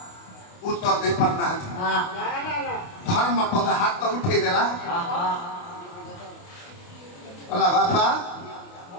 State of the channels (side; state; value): right; late; 28 ms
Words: उत्तर दे पारना धर्म पद हाथ उठे देला बोला बापा